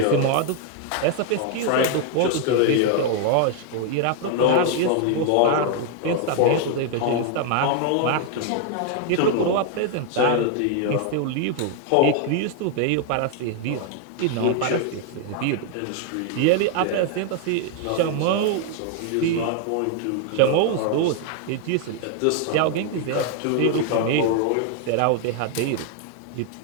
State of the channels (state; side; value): different; both; correlation 0.00